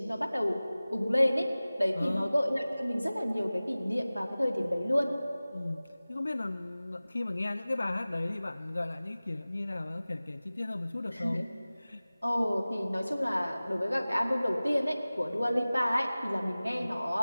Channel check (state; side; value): inverted; both; correlation -0.98